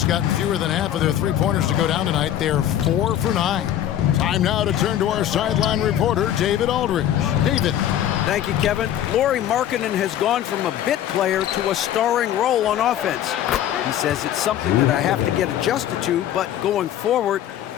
gotten fewer than half of their three-pointers to go down tonight. They're 4 for 9. Time now to turn to our sideline reporter, David Aldridge. David. Thank you, Kevin. Lauri Markkanen has gone from a bit player to a starring role on offense. He says it's something that I have to get adjusted to, but going forward,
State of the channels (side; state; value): right; quieter; 11.3 dB